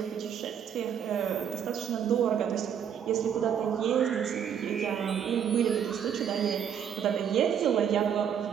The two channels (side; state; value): left; quieter; 8.4 dB